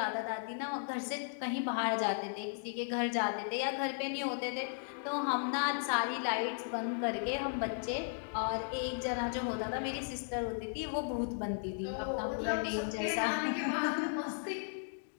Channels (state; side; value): silent; right; digital silence